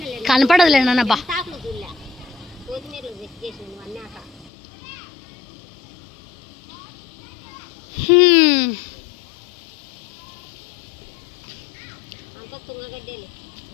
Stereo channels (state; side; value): drops out; right; at 4.5 s